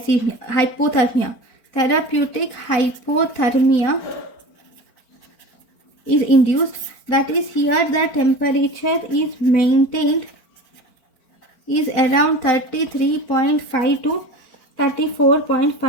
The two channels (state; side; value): late; right; 4.4 ms